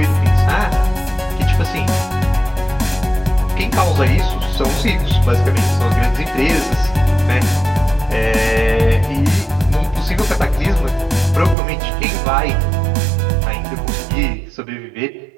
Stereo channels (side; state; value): left; drops out; at 11.6 s